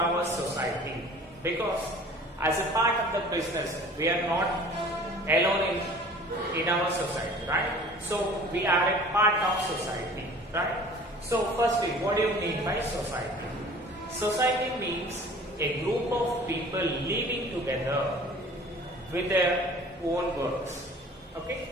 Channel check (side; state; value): both; normal; correlation 0.46